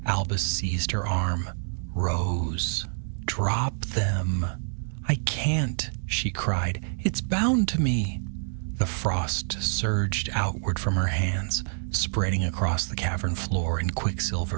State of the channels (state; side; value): silent; left; digital silence